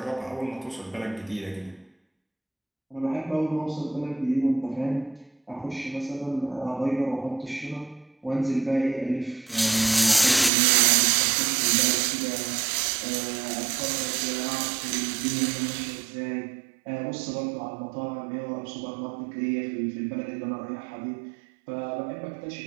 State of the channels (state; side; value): drops out; left; at 10.5 s